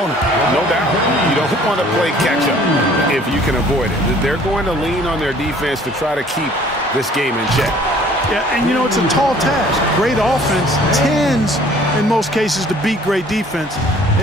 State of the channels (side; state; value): both; normal; correlation 0.54